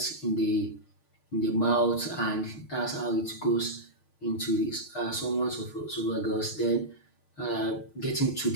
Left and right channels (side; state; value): right; late; 6.5 ms